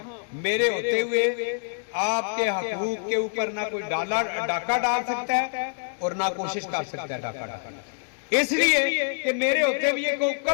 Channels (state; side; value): silent; right; digital silence